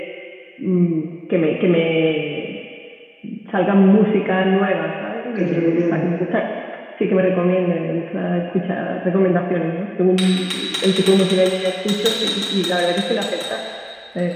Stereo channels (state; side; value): identical; both; correlation 1.00